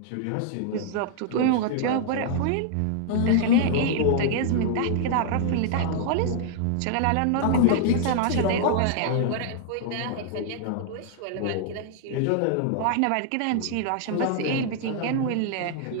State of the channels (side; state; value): both; different; correlation -0.01